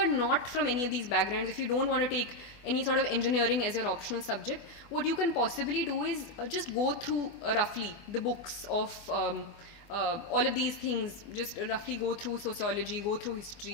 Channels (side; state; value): right; late; 24 ms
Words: not from any of these backgrounds, if you don't want to take any sort of engineering as your optional subject, what you can possibly do is just go through roughly the books of all of these things. Just roughly go through sociology, go through